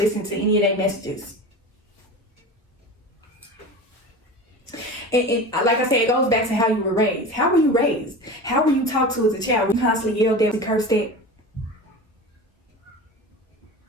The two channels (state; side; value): normal; both; correlation 0.31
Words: to any of their messages. And like I said, it goes back to how you were raised. How were you raised? How were you talked to as a child? Were you constantly yelled at and cursed at?